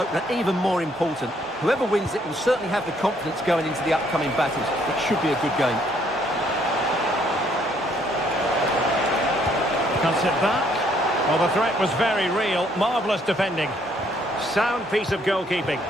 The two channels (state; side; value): normal; both; correlation 0.67